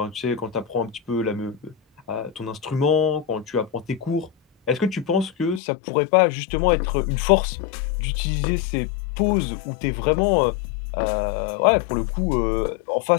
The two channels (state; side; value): drops out; right; at 5.6 s